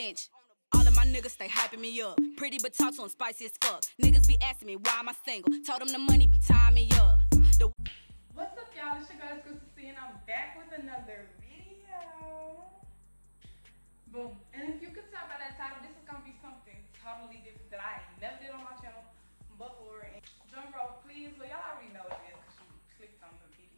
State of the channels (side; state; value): both; inverted; correlation -1.00